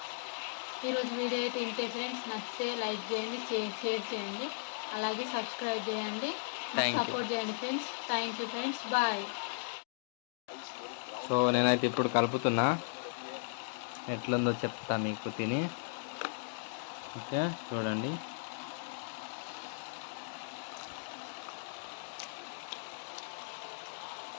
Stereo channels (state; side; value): silent; right; digital silence